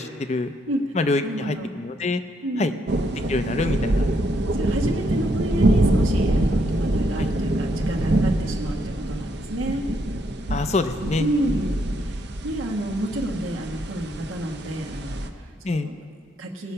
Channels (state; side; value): normal; both; correlation 0.75